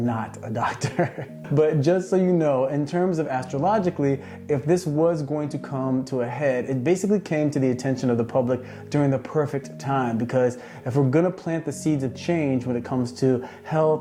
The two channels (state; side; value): identical; both; correlation 1.00